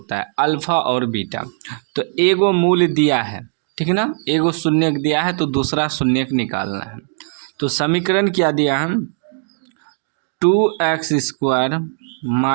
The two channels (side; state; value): left; silent; digital silence